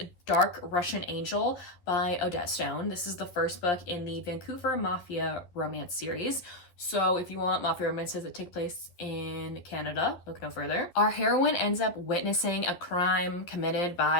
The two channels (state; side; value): late; right; 11 ms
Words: Dark Russian Angel by Odette Stone. This is the first book in the Vancouver Mafia romance series. So if you want mafia romances that take place in Canada, look no further. Our heroine ends up witnessing a crime committed